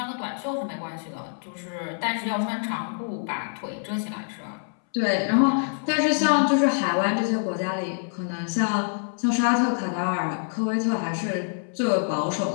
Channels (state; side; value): silent; right; 61 dB below the other